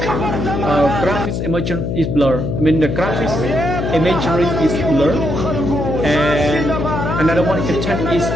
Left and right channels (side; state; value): left; noise; hum, 2 dB below the sound